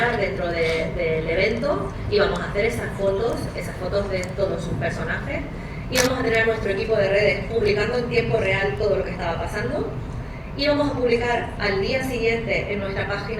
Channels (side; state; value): both; identical; correlation 1.00